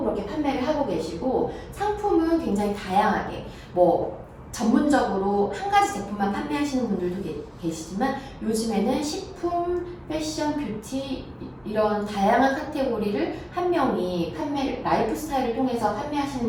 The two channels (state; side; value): identical; both; correlation 1.00